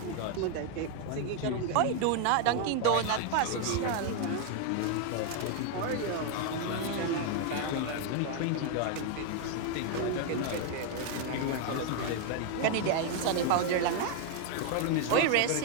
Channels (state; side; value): different; both; correlation 0.00